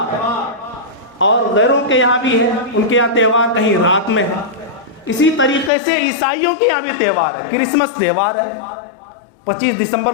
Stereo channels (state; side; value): drops out; right; at 5.7 s